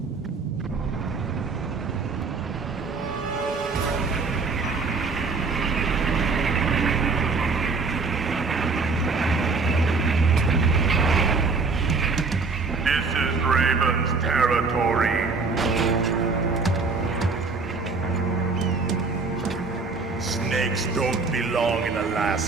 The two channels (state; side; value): quieter; left; 4.3 dB